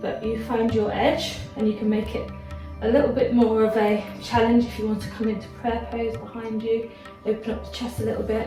you find your edge and you can make it a little bit more of a challenge if you want to come into prayer pose behind you, open up the chest a little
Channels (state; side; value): identical; both; correlation 1.00